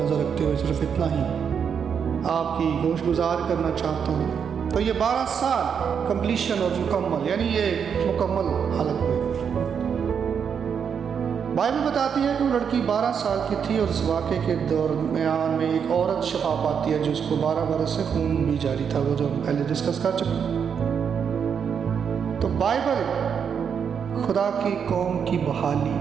رکھتے ہوئے صرف اتنا ہی آپ کی گوش گزار کرنا چاہتا ہوں۔ تو یہ 12 سال کمپلیشن اور مکمل، یعنی یہ مکمل حالت میں۔ بائبل بتاتی ہے کہ وہ لڑکی 12 سال کی تھی اور اس واقعے کے درمیان میں ایک عورت شفا پاتی ہے جس کو 12 برس سے خون بھی جاری تھا، وہ جو ہم پہلے ڈسکس کر چکے۔ تو بائبل خدا کی قوم کی بحالی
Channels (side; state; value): left; quieter; 7.2 dB